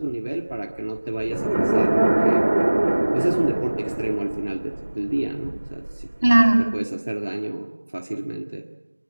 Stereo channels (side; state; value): both; inverted; correlation -1.00